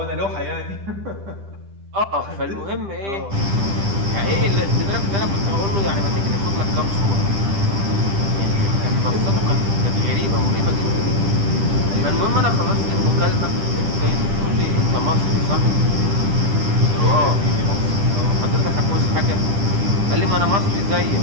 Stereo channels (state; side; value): late; left; 10 ms